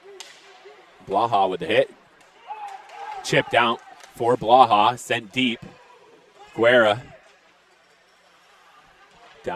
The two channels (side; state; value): both; identical; correlation 1.00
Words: Blaha with the hit. Chipped out for Blaha, sent deep. Guerra.